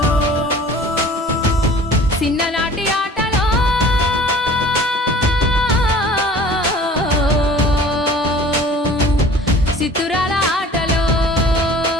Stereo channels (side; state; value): both; normal; correlation 0.46